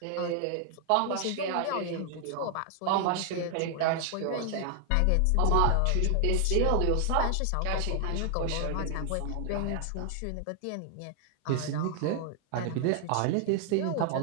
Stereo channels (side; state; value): both; different; correlation 0.00